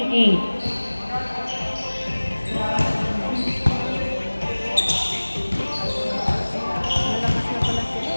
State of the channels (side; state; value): both; inverted; correlation -1.00